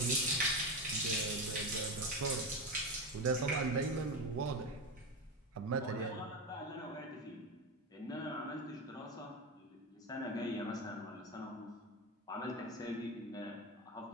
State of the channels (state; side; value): normal; both; correlation 0.17